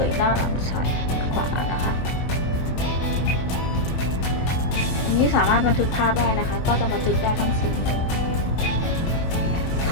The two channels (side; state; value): right; late; 23 ms